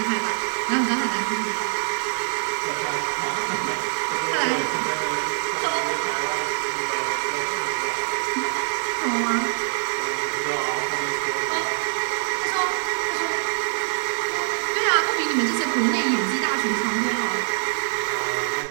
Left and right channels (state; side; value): silent; left; 62 dB below the other